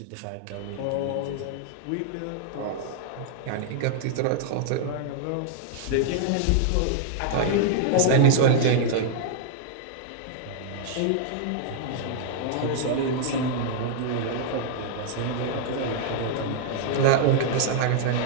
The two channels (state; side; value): different; both; correlation -0.01